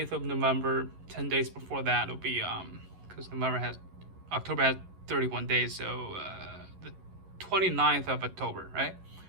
of November, 10 days before that, it'll be, because October has 31 days, so the 29th of October, right?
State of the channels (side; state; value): left; late; 11 ms